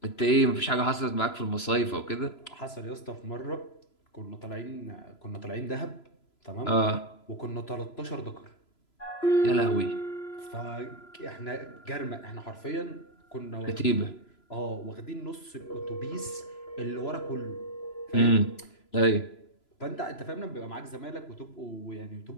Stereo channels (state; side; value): late; right; 3.0 ms